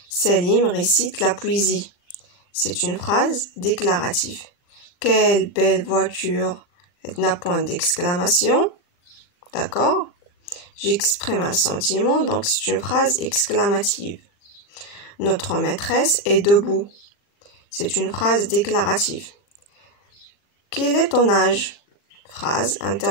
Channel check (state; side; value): late; right; 39 ms